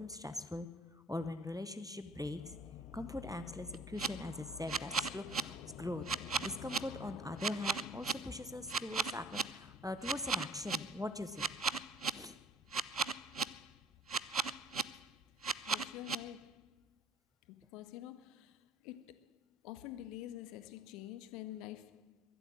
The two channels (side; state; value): both; normal; correlation 0.51